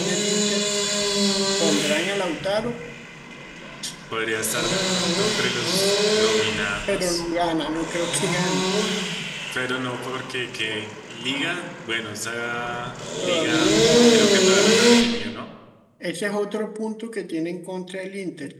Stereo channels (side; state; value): both; identical; correlation 1.00